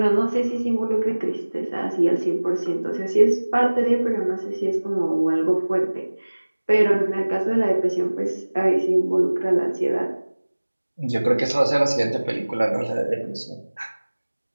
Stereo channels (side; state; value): both; inverted; correlation -1.00